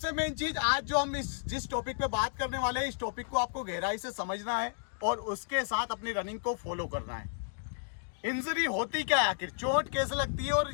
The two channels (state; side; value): silent; right; digital silence